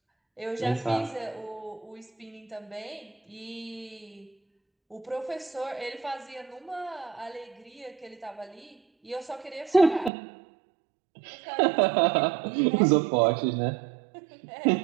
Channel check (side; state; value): left; drops out; at 10.1 s